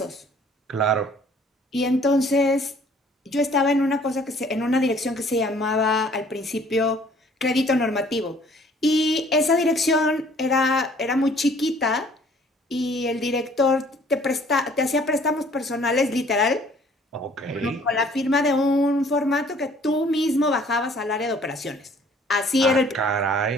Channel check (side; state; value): both; normal; correlation 0.56